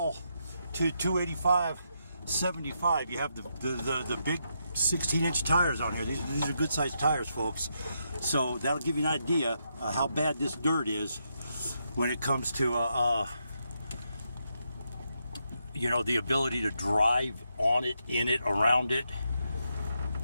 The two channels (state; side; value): inverted; both; correlation -0.81